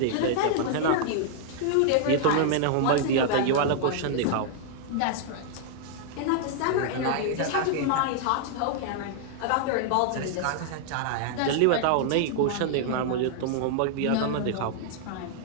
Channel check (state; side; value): different; both; correlation -0.01